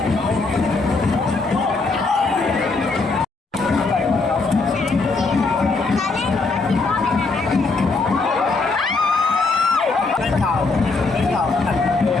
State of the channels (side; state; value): right; quieter; 3.9 dB